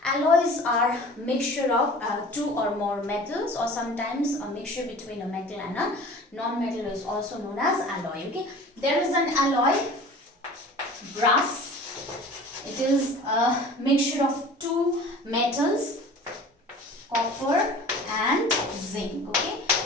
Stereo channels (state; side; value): normal; both; correlation 0.42